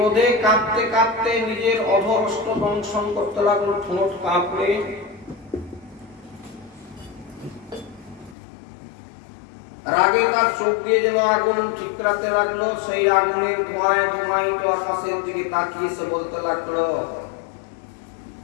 কাঁপতে কাঁপতে নিজের অধরষ্ট দংশন করতে লাগলো, ঠোঁট কাঁপড়ে রাগে তার চোখ দিয়ে যেন আগুন ঠিকরাতে লাগলো। সেই আগুনের ধোঁয়ায় ধোঁয়ায়িত আকাশের দিকে তাকিয়ে সে বলতে লাগলো,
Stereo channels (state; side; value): drops out; right; at 8.3 s